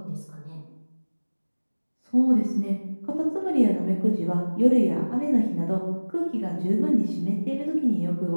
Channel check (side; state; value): both; inverted; correlation -1.00